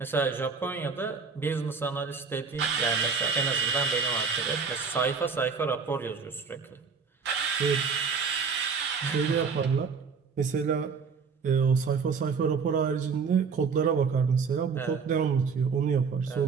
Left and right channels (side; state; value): left; quieter; 5.4 dB